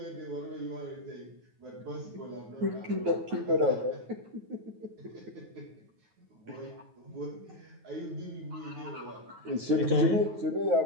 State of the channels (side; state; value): left; late; 9.3 ms